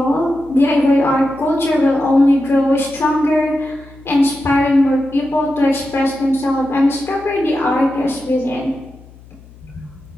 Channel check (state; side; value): noise; left; hum, 23 dB below the sound